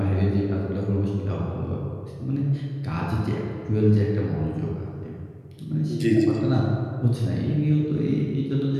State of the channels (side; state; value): both; identical; correlation 1.00